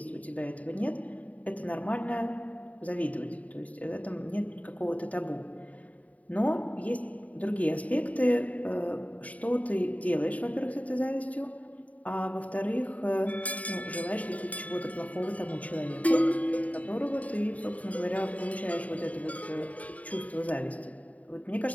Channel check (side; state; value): right; late; 0.070 ms